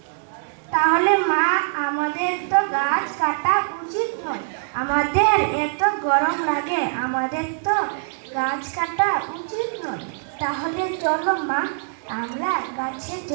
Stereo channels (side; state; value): left; silent; digital silence